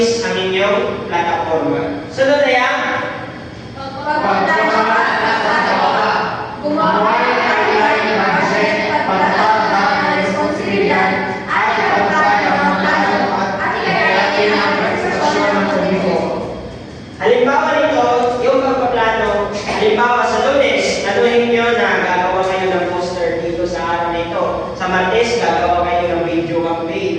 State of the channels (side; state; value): both; identical; correlation 1.00